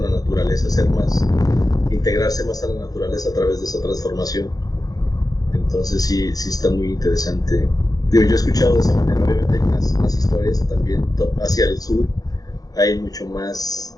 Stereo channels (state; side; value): late; right; 0.18 ms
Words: la naturaleza, integrarse más a la naturaleza a través de esa transformación. Entonces sí está muy interesante. Yo he escuchado de esa manera, obviamente hay más historias también hacia el sur, hay mucho más